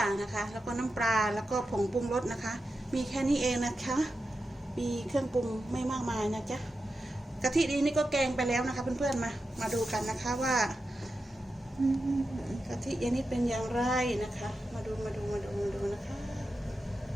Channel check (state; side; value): normal; both; correlation 0.90